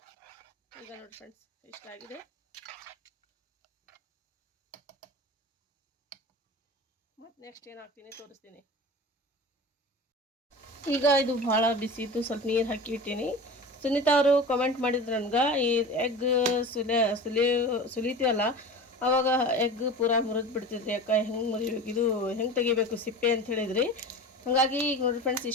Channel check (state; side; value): normal; both; correlation 0.33